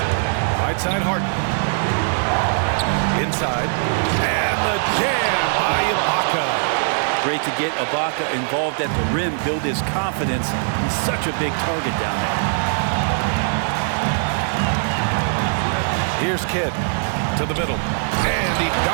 Right side Harden. Inside. And the jam by Ibaka. Great to get Ibaka involved at the rim, build his confidence. He's such a big target down there. Here's Kidd to the middle. And he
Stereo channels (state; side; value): silent; left; digital silence